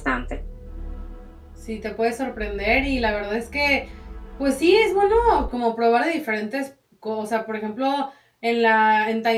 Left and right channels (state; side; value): identical; both; correlation 1.00